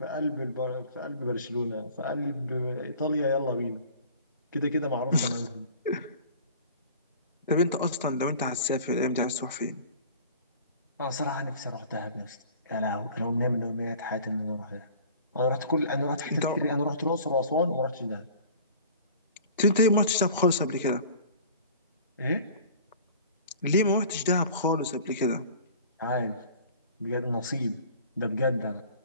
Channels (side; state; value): both; inverted; correlation -0.45